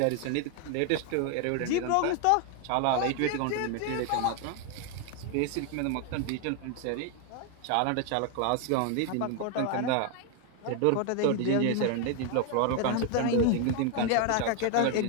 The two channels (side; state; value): both; different; correlation 0.00